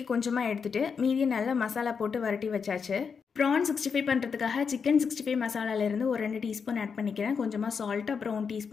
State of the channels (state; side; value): quieter; right; 6.0 dB